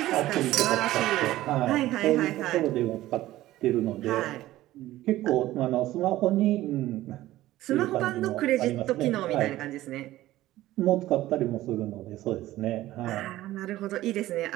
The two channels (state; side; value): quieter; left; 15.6 dB